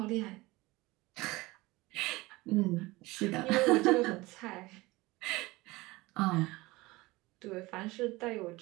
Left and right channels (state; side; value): quieter; left; 21.1 dB